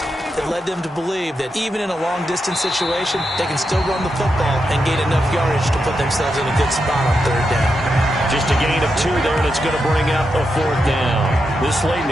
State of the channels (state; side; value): normal; both; correlation 0.86